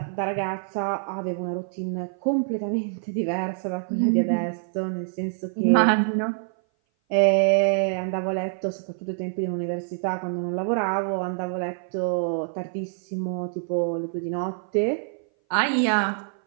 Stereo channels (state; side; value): silent; left; 57 dB below the other